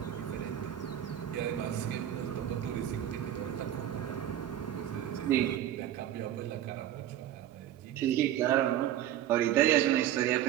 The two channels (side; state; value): left; quieter; 11.7 dB